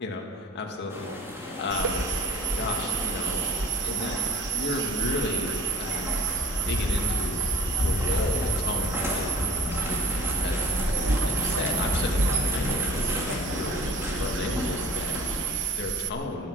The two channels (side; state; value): both; normal; correlation 0.48